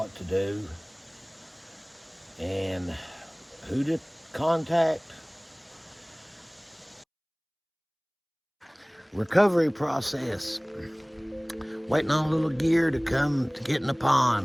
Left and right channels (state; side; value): identical; both; correlation 1.00